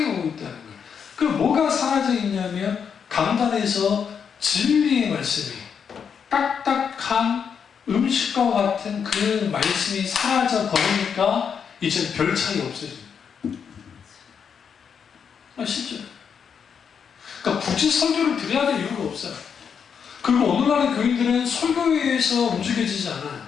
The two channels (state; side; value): quieter; right; 7.0 dB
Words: 오고 있다는 거예요. 그 뭐가 사라져 있냐면 강단에서 진리의 말씀이 딱딱한 음식과 같은 그 말씀이 사라져 버리니까 이제 별 차이 없어집니다. 실제로. 그러니까 굳이 설교를 드려야 될 이유가 없어요. 그리고 오늘날의 교인들은 설교에 의해서 움직여지지